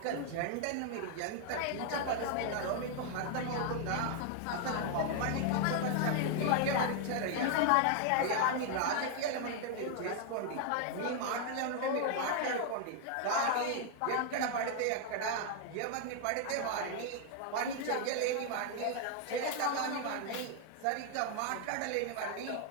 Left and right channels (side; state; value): both; different; correlation 0.00